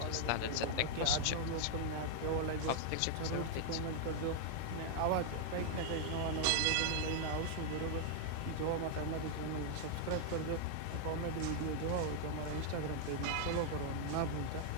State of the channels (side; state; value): both; different; correlation -0.01